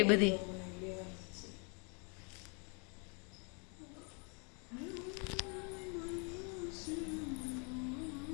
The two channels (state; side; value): quieter; right; 35.9 dB